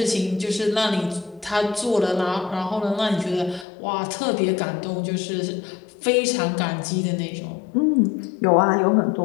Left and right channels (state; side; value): drops out; right; at 3.7 s